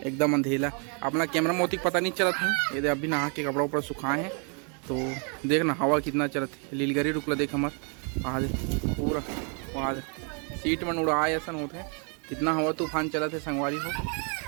अंधेला अपना कैमरा मोती पता नहीं चला था ये अभी नहा के कपड़ा ऊपर सुखाए हैं तो देखना हवा कितना चलत है लीलगरी रुकला देख हमार आज पूरा आज सीट में उड़ाए ऐसा होते हैं कितना हवा तूफान चला थे संगवारी हो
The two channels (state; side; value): quieter; left; 38.2 dB